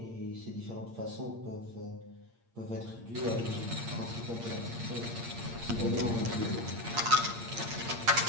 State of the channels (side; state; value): left; late; 8.7 ms